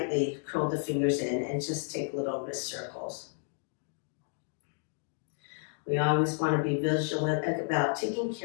curl the fingers in and just take little wrist circles. We always want to be vigilant about taking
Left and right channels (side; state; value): right; silent; 57 dB below the other